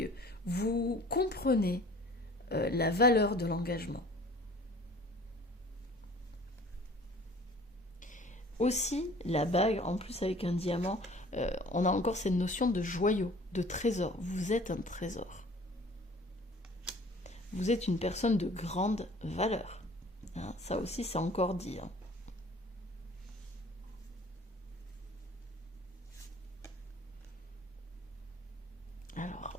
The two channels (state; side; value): normal; both; correlation 0.49